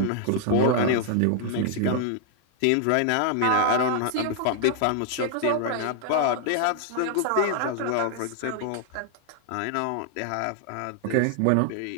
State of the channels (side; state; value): both; different; correlation 0.00